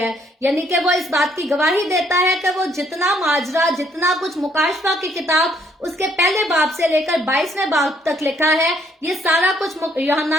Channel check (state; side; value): normal; both; correlation 0.68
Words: यानी कि वो इस बात की गवाही देता है कि वो जितना माजरा, जितना कुछ मुकाशवा की किताब उसके पहले बाब से लेकर 22वें बाब तक लिखा है, ये सारा कुछ